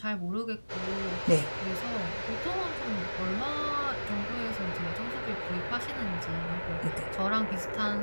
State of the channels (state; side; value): inverted; both; correlation -1.00